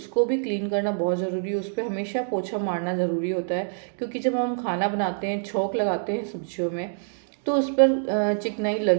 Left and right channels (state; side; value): silent; left; digital silence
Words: भी क्लीन करना बहुत ज़रूरी है। उस पर हमेशा पोछा मारना ज़रूरी होता है, क्योंकि जब हम खाना बनाते हैं, छोंक लगाते हैं सब्जियों में, तो उस पर चिकनाई